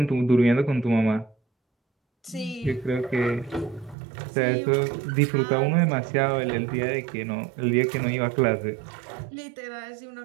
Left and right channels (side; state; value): left; drops out; at 4.0 s